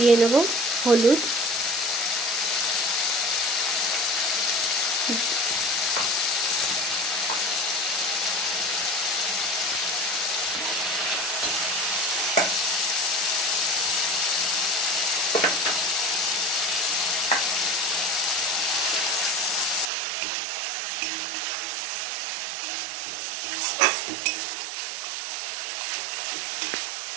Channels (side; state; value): left; drops out; at 19.9 s